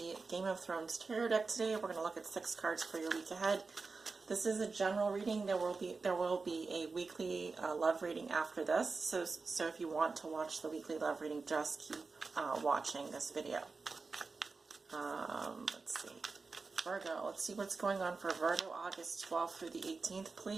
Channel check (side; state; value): left; quieter; 4.2 dB